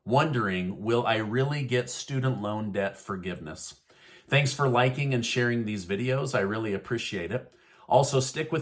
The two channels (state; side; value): identical; both; correlation 1.00